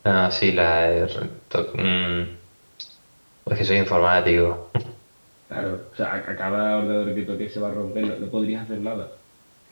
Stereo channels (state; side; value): inverted; both; correlation -1.00